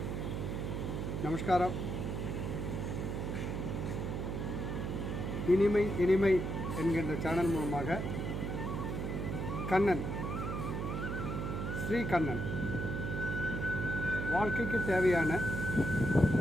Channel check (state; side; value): noise; right; hum, 2 dB below the sound